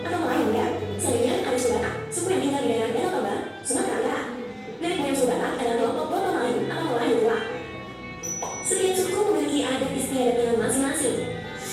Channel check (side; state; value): both; identical; correlation 1.00